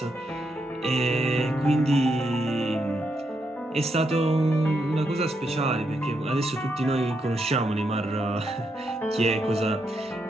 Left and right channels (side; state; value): both; normal; correlation 0.80